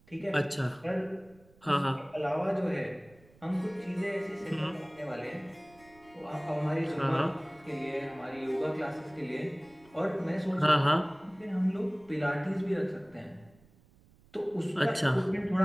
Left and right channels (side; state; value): right; noise; rumble, 28 dB below the sound